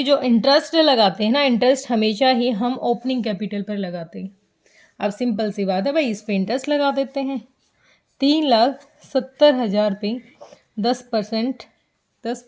जो इंटरेस्ट लगाते हैं ना, इंटरेस्ट हमेशा ही हम ओपनिंग कैपिटल पर लगाते हैं। अब सिंपल सी बात है भाई, इस पर इंटरेस्ट लगा देते हैं। 3,70,000 पे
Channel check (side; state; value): both; identical; correlation 1.00